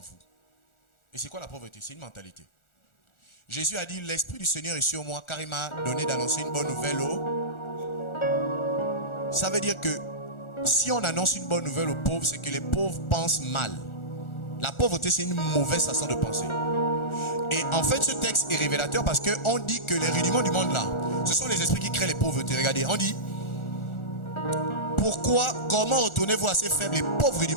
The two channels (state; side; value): late; right; 1.4 ms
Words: Et c'est quoi la pauvreté? C'est une mentalité. Jésus a dit: l'Esprit du Seigneur est sur moi car il m'a donné d'annoncer une bonne nouvelle Ça veut dire que si on annonce une bonne nouvelle aux pauvres, c'est que les pauvres pensent mal. La pauvreté, c'est une mauvaise façon de penser. Et en fait, ce texte est révélateur parce qu'on dit que les rudiments du monde là, ce sont les esprits qui créent les pauvretés. Regardez, on dit: comment retournez-vous à ces faibles et pauvres